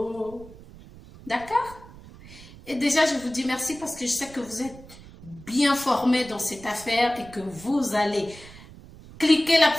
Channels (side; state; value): right; noise; rumble, 19 dB below the sound